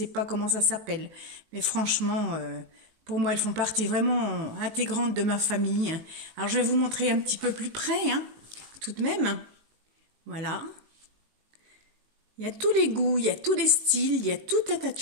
pas comment ça s'appelle. Mais franchement, pour moi, elles font partie vraiment intégrante de ma famille. Alors je vais vous montrer un petit peu plus près, hein, tout de même. Voilà. Il y a tous les goûts, il y a tous les styles, il y a tout un tas de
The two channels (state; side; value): late; left; 19 ms